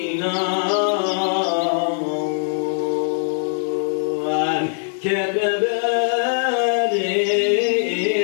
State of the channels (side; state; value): right; silent; digital silence